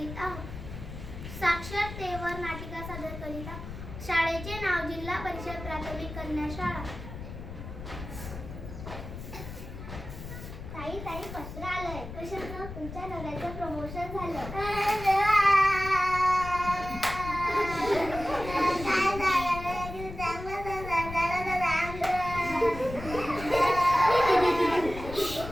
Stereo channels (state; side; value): noise; left; rumble, 10 dB below the sound